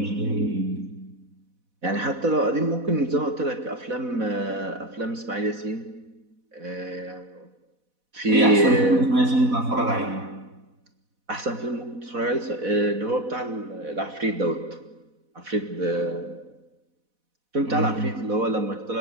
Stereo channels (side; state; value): left; late; 4.1 ms